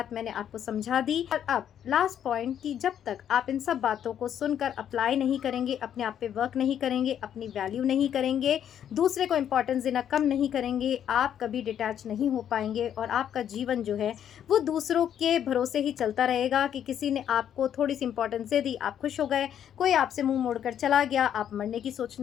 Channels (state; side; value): quieter; right; 9.6 dB